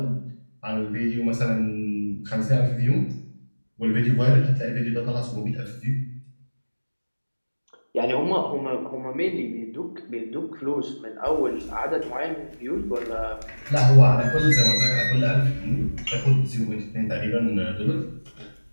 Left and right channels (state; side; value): inverted; both; correlation -1.00